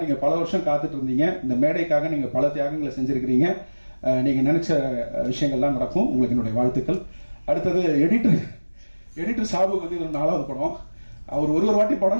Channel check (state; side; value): inverted; both; correlation -1.00